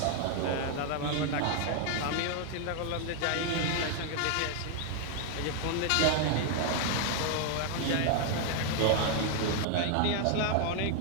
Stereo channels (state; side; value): different; both; correlation 0.00